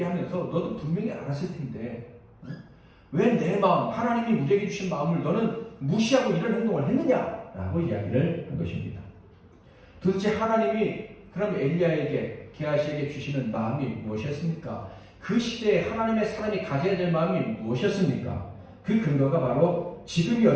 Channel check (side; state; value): both; identical; correlation 1.00